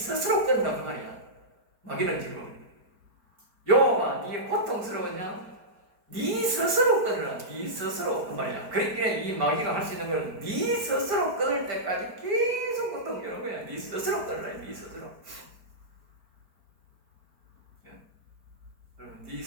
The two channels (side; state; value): left; late; 5.1 ms